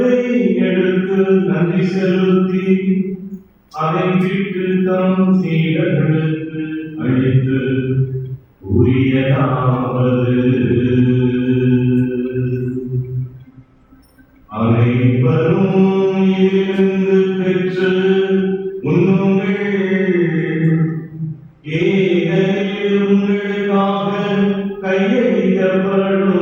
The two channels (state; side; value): identical; both; correlation 1.00